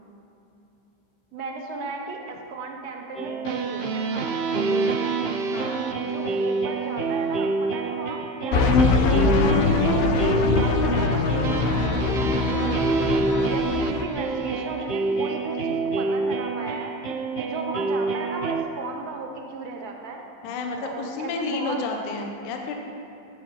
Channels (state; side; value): late; right; 15 ms